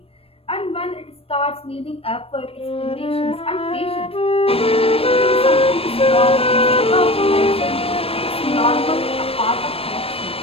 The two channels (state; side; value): late; right; 0.28 ms